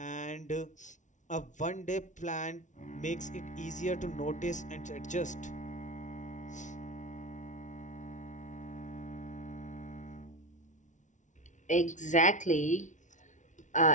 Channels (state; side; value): late; right; 0.36 ms